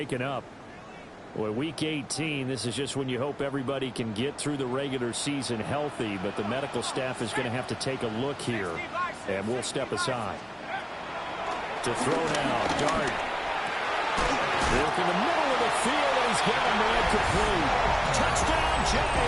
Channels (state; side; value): identical; both; correlation 1.00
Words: up. Well, week 18, this is just when you hope everybody can get through the regular season healthy, but the medical staff is going to have to take a look here, and we'll step aside. To throw now, Dart. Look in the middle of the field, and he's got a man complete. Touchdown,